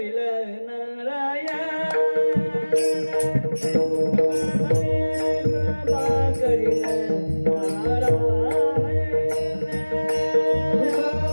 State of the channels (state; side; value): inverted; both; correlation -1.00